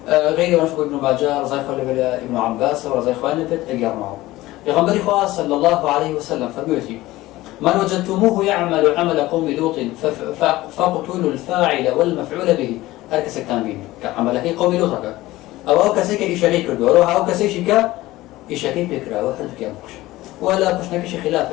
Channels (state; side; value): quieter; right; 17.7 dB